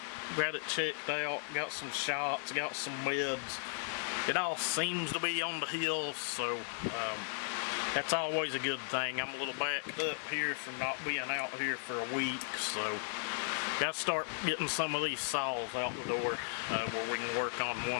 got it checked out, got some shots, got some meds. It all seems to be on the hill, so that's always a good thing. I'm a little backed up here from not being out here for a week, so gotta start getting some of these saws out the door where we can work on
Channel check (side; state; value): right; silent; 54 dB below the other